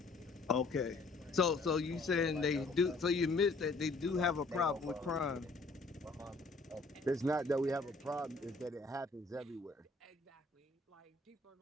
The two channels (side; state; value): right; quieter; 3.5 dB